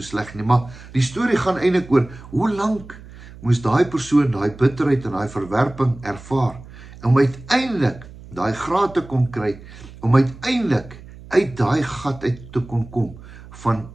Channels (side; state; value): right; noise; hum, 18 dB below the sound